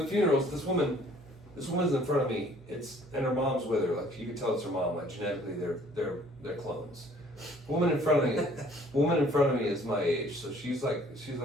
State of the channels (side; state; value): both; normal; correlation 0.56